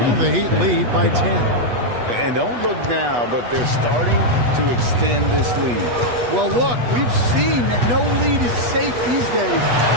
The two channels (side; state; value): left; late; 8.2 ms